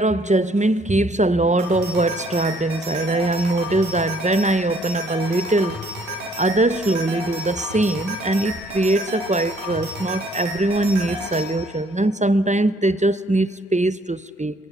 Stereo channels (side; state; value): both; normal; correlation 0.63